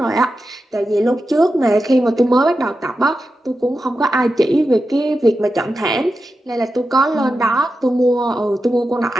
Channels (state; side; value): normal; both; correlation 0.90